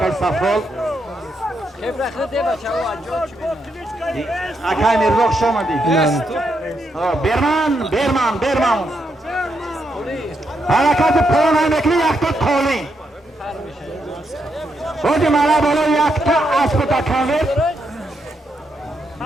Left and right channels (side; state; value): both; normal; correlation 0.80